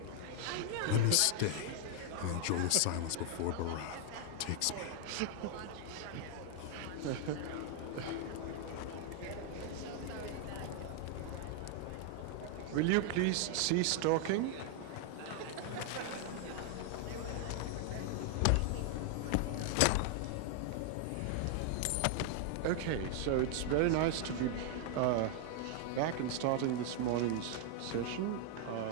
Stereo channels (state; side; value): different; both; correlation 0.00